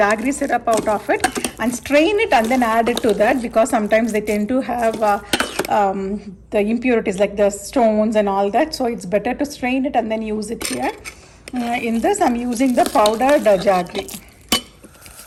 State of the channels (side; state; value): both; identical; correlation 1.00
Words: syrup out of it, and strain it and then add it to that, because sometimes they tend to have the impurities like the stones and all that. So it's better to strain it and then use it here. In this I'm using the powdered jaggery.